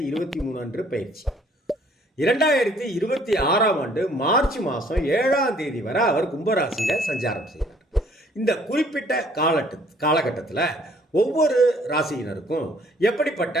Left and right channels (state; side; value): normal; both; correlation 0.60